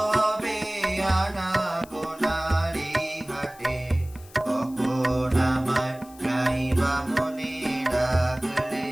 হবে আনা গোনার এই ঘাটে, কখন আমায় গাইবা মনে ডাকলে,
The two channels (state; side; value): noise; left; hiss, 23 dB below the sound